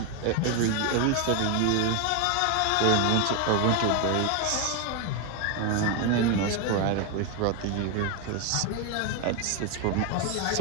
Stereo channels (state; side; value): different; both; correlation 0.01